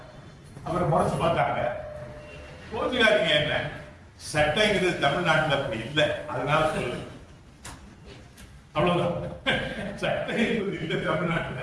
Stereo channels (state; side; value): identical; both; correlation 1.00